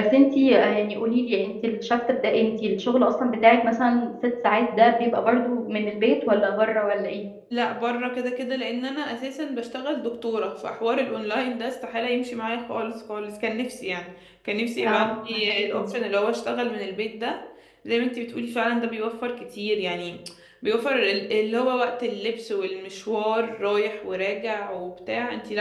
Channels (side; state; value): both; identical; correlation 1.00